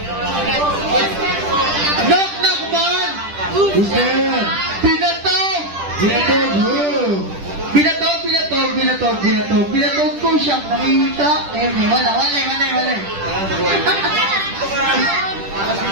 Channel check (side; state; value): left; late; 10 ms